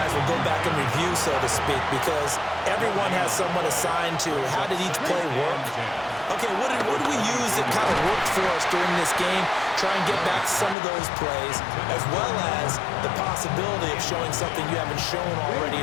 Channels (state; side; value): drops out; right; at 10.8 s